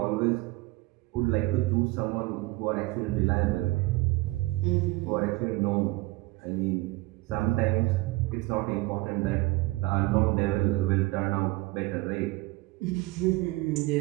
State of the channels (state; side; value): quieter; left; 21.1 dB